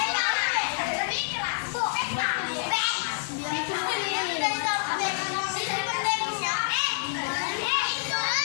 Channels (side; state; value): right; silent; digital silence